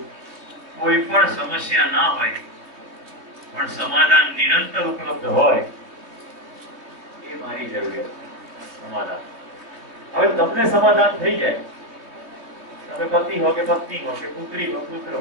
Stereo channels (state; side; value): late; left; 3.1 ms